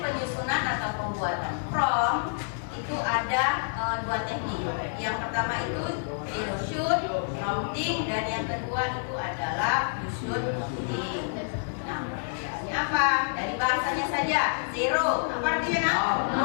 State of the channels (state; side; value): silent; right; 59 dB below the other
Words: atau pembuatan prompt itu ada 2 teknik. Yang pertama itu zero shoot, prompting, dan yang kedua itu adalah you should prompting. Nah, perbedaannya apa? Dari bahasanya saja, zero, apa artinya?